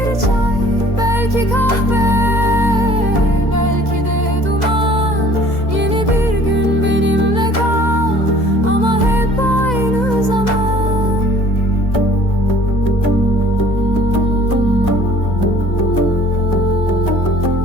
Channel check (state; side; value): late; right; 2.0 ms